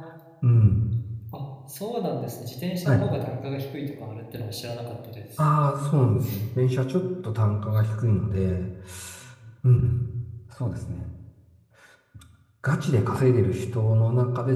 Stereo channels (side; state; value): both; identical; correlation 1.00